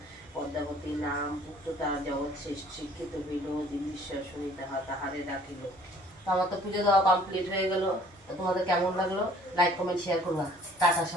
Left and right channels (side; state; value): both; normal; correlation 0.55